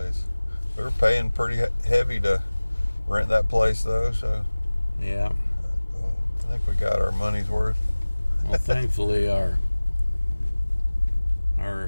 We were paying pretty heavy to rent that place, though, so Yeah. I think we got our money's worth. Well, thankfully, our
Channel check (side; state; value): both; inverted; correlation -1.00